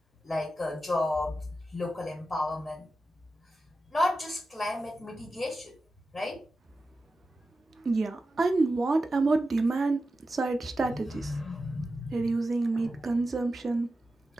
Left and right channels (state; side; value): normal; both; correlation 0.92